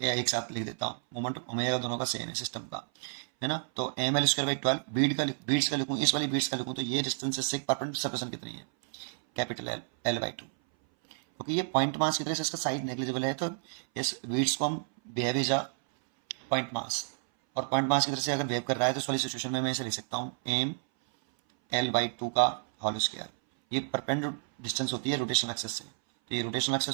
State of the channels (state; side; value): silent; left; 57 dB below the other